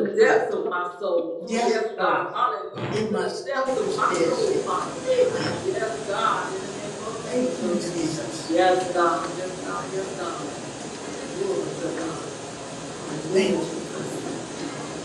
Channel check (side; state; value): both; identical; correlation 1.00